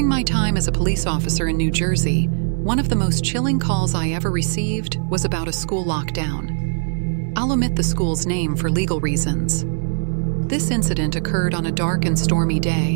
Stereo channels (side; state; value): left; silent; digital silence